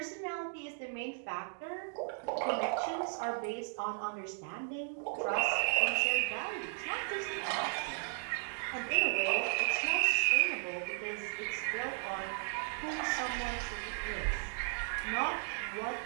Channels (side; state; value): left; silent; digital silence